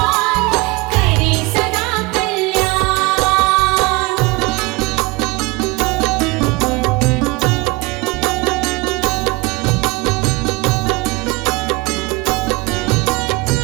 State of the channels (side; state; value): left; quieter; 24.1 dB